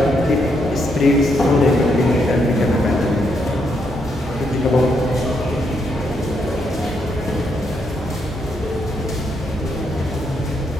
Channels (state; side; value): normal; both; correlation 0.77